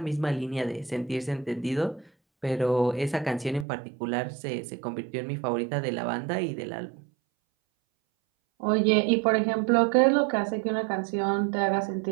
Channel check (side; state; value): left; drops out; at 3.7 s